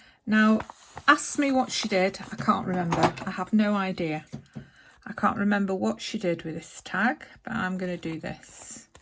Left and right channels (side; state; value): both; identical; correlation 1.00